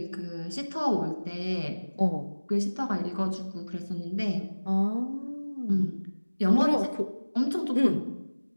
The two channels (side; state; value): both; inverted; correlation -1.00